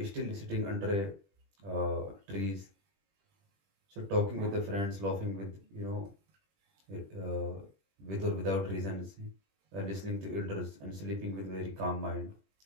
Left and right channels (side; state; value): left; late; 20 ms